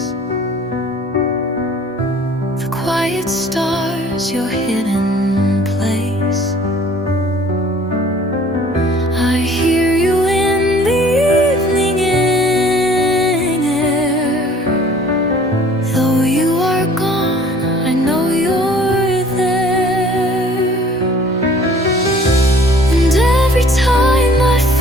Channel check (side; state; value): both; normal; correlation 0.52